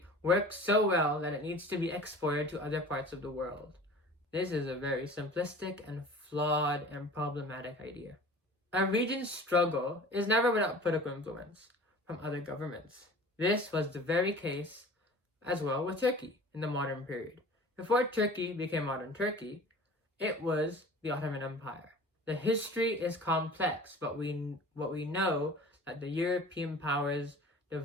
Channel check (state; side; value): normal; both; correlation 0.42